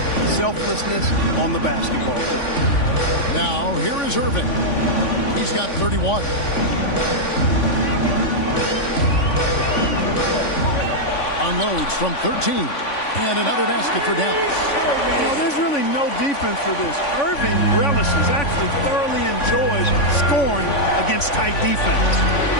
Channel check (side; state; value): right; late; 3.5 ms